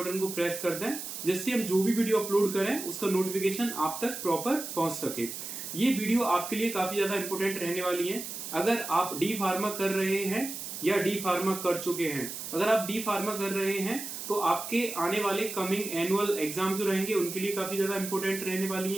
को प्रेस कर दें, जिससे हम जो भी वीडियो अपलोड करें उसका नोटिफिकेशन आप तक प्रॉपर पहुंच सके। ये वीडियो आपके लिए काफी ज्यादा इंपॉर्टेंट रहने वाली है। अगर आप डी फार्मा कर रहे हैं या डी फार्मा कर चुके हैं, अगर आप डी फार्मा कर रहे हैं तो आपके आने वाले कमिंग एनुअल एग्जाम जो रहेंगे उनके लिए काफी ज्यादा इंपॉर्टेंट रहने वाली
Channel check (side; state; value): right; noise; hiss, 8 dB below the sound